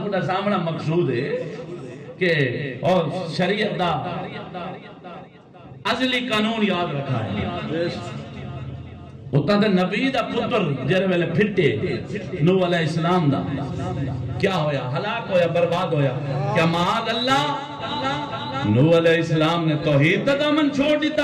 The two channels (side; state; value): both; identical; correlation 1.00